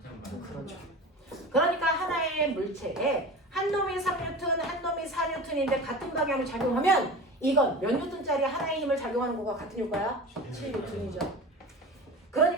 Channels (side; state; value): both; normal; correlation 0.33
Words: 방. 그렇죠. 그러니까 하나의 물체에 한 놈이 3N, 한 놈이 4N인데 같은 방향으로 작용하면 이건 몇 N짜리 하나의 힘을 작용하는 거가 같은 효과야? 7N이죠.